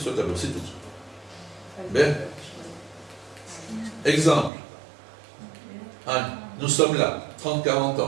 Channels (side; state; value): left; drops out; at 4.5 s